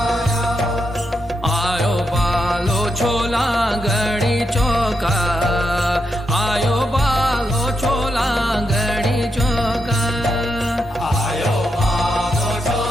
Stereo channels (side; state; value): both; normal; correlation 0.83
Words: आयो बालो छोला गणी चौका, आयो बालो छोला गणी चौका। आयो बालो